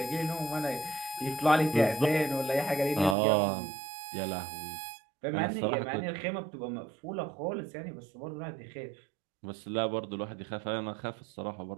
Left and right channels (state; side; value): drops out; left; at 3.2 s